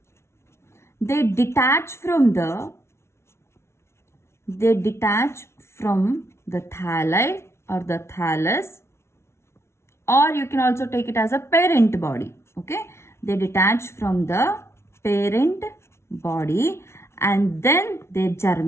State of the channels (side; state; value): right; late; 0.13 ms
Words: they detach from the thalli or the thallus, or you can also take it as a parent body. Okay, they detach from the parent body and then they